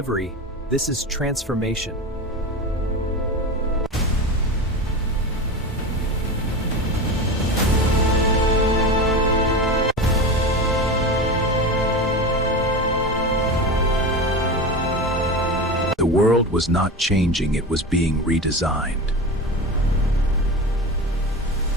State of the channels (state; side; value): normal; both; correlation 0.25